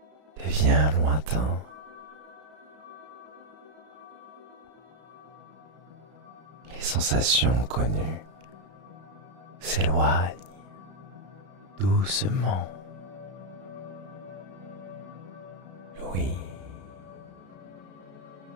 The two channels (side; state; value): left; late; 33 ms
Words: devient lointain. Les sensations connues s'éloignent doucement. L'ouïe,